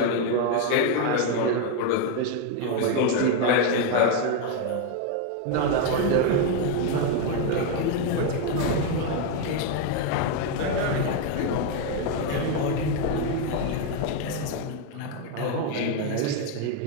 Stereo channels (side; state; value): both; different; correlation 0.01